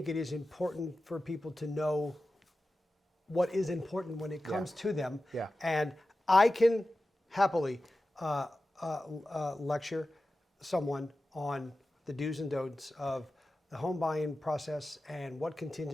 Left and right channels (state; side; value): normal; both; correlation 0.94